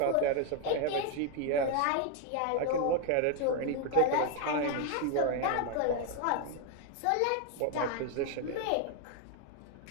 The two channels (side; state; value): both; different; correlation 0.01